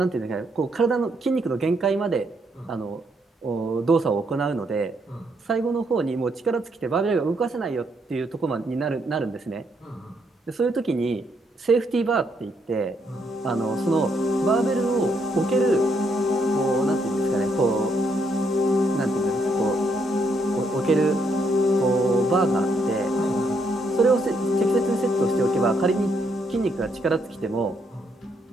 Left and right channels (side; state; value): both; normal; correlation 0.74